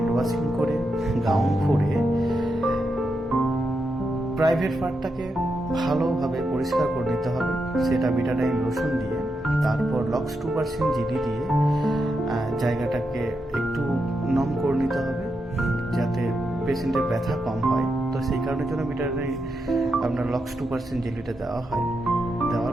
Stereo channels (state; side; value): normal; both; correlation 0.85